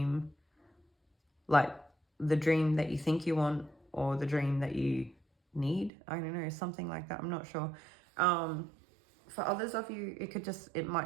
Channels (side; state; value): left; drops out; at 5.9 s